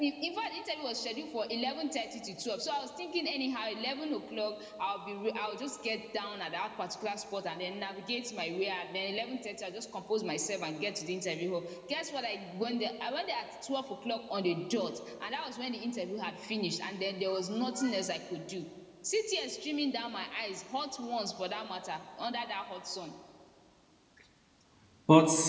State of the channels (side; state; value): both; identical; correlation 1.00